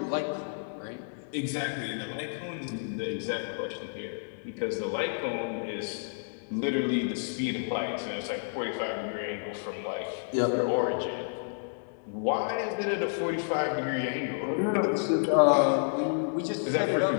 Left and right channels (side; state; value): right; silent; digital silence